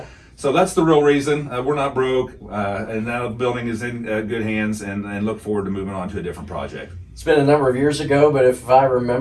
So that's the real reason. We're not broke, and now the building is in good hands, and look forward to moving on to a different project. It's been a number of years ago, but if I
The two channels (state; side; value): identical; both; correlation 1.00